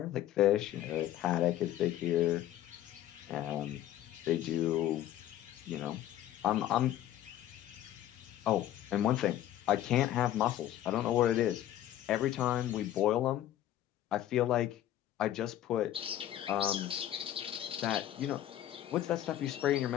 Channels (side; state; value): right; quieter; 12.5 dB